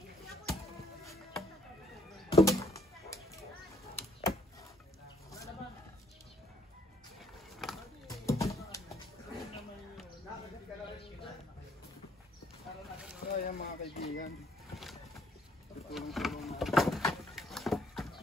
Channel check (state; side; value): normal; both; correlation 0.64